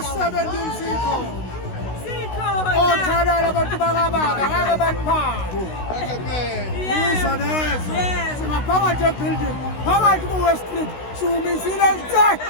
sikhona. Othalala abantu bakababa ngeke baniphathe. Yizo lezo. Singaphakathi ebuilding, phakathi ku-West Street, siwumisile nje.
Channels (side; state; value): right; late; 16 ms